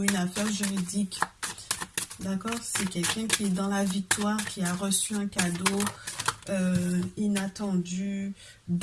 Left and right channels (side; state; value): both; identical; correlation 1.00